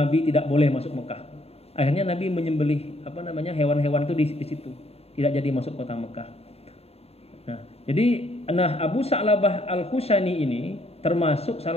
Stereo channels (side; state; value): right; late; 0.29 ms